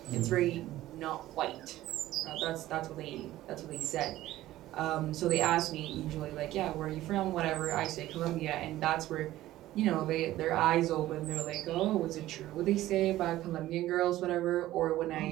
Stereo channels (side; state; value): left; quieter; 15.2 dB